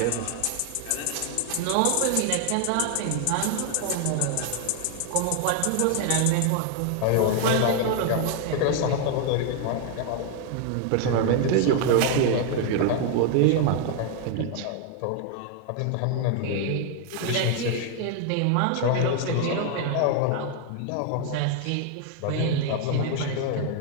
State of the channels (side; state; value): both; different; correlation 0.00